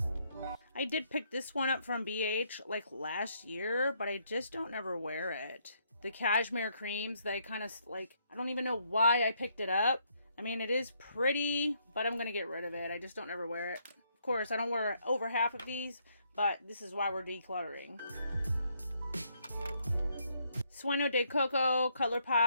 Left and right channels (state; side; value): inverted; both; correlation -0.72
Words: I did pick this one up from BH like last year, but I just don't ever wear it. The cashmere creams, they kind of like, I don't even know why I picked it up. I mean, it is pretty, but I'm going to get rid of it. I just don't ever wear it. Of course, I don't wear over half of these, but this is why we're decluttering. Sueño de Coco